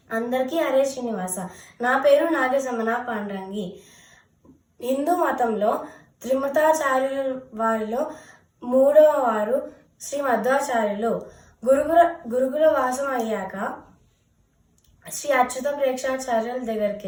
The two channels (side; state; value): both; identical; correlation 1.00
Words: అందరికీ హరే శ్రీనివాస. నా పేరు నాగసమన పాండ్రంగి. హిందూ మతంలో త్రిమతాచార్యుల వారిలో మూడవ వారు శ్రీ మధ్వాచార్యులు. గురుకుల వాసం అయ్యాక శ్రీ అచ్యుత ప్రేక్షాచార్యుల దగ్గరికి